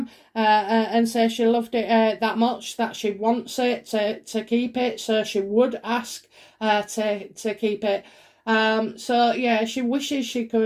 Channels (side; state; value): both; identical; correlation 1.00